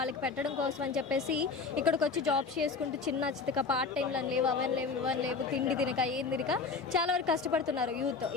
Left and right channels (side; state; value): right; quieter; 4.6 dB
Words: పెట్టడం కోసం అని చెప్పేసి ఇక్కడికి వచ్చి జాబ్స్ చేసుకుంటూ చిన్న చితక పార్ట్ టైంలు లేవు, ఇవన్నీ లేవు, తిండి తినక ఏం తినక చాలా వరకు కష్టపడుతున్నారు యూత్.